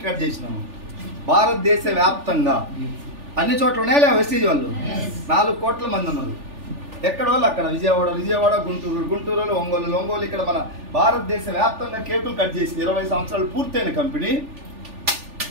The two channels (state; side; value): late; left; 3.4 ms